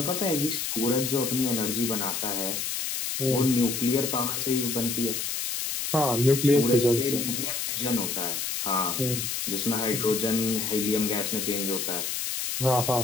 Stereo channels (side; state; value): left; noise; hiss, 2 dB below the sound